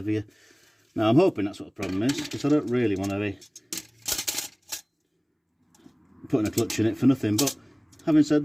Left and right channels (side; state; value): both; identical; correlation 1.00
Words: Now I'm hoping that's what the problem is, because I don't really want to be putting a clutch in it for nothing. But having said